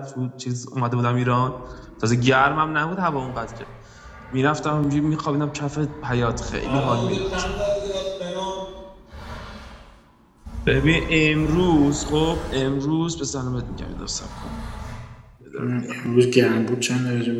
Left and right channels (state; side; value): identical; both; correlation 1.00